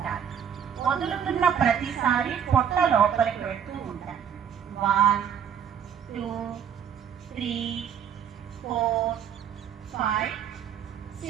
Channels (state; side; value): quieter; left; 8.2 dB